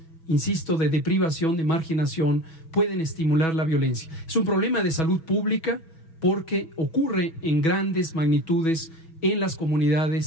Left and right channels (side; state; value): right; late; 6.1 ms